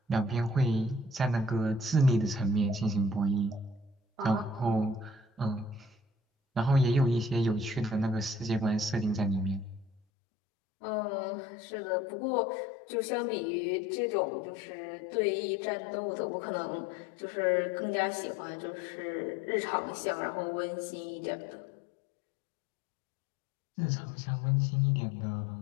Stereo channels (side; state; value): right; drops out; at 10.0 s